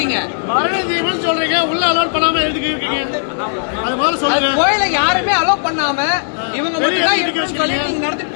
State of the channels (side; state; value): right; silent; digital silence